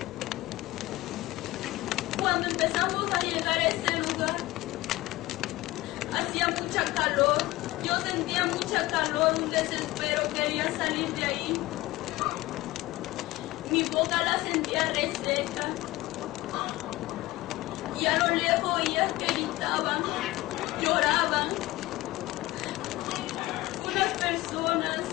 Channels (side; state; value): right; quieter; 18.5 dB